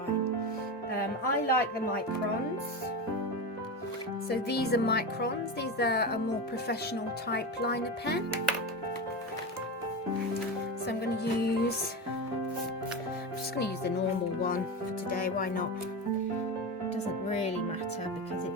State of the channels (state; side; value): normal; both; correlation 0.21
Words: I like the microns. So these are microns. These are a more professional type liner pen. So I'm going to use, the normal one for today. Why not? It doesn't really matter because